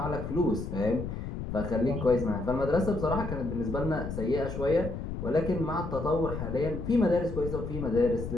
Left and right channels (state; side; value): noise; left; rumble, 6 dB below the sound